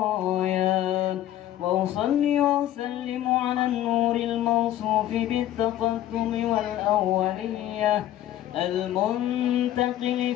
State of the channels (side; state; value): right; quieter; 12.9 dB